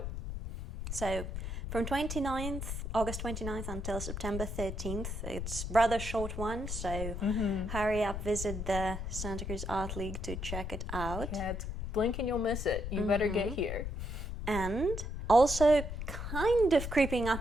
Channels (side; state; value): left; noise; rumble, 5 dB below the sound